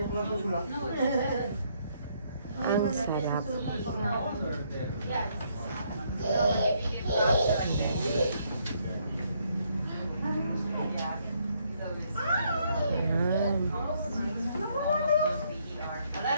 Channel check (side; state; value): both; inverted; correlation -0.71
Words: Ang sarap. Ayan.